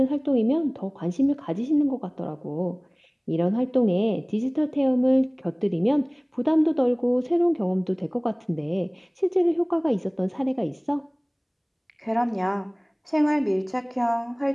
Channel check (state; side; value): identical; both; correlation 1.00